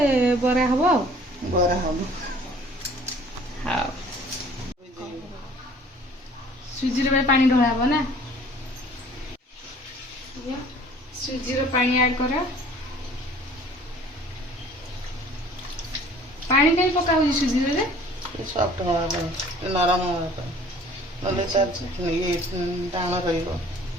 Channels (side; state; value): both; normal; correlation 0.52